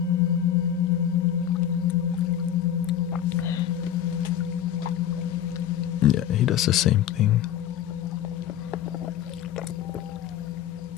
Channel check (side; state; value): right; quieter; 10.4 dB